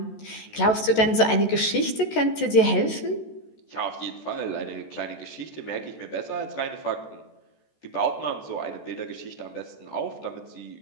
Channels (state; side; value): late; right; 14 ms